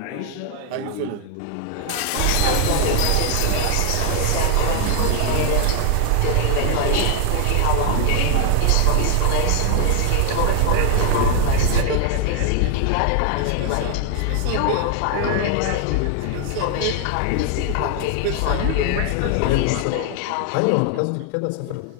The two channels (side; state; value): both; different; correlation 0.00